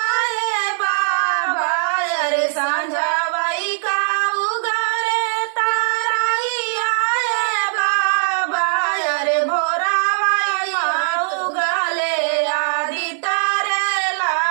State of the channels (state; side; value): silent; left; digital silence